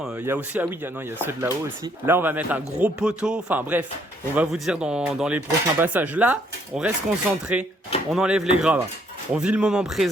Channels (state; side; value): normal; both; correlation 0.68